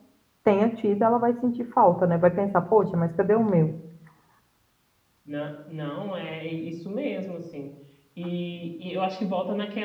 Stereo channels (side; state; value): both; identical; correlation 1.00